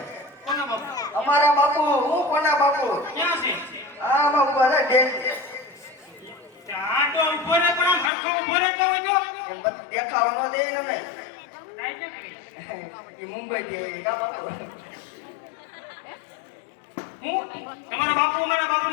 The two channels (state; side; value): drops out; right; at 8.1 s